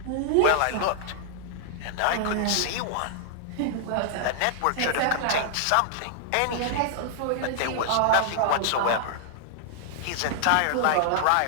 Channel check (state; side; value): different; both; correlation -0.01